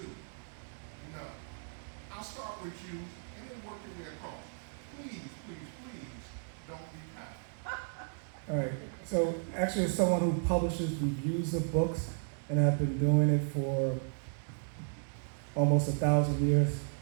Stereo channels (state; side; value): silent; left; digital silence